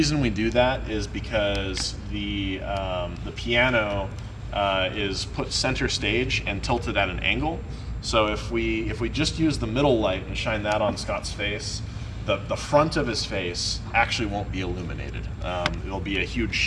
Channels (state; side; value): identical; both; correlation 1.00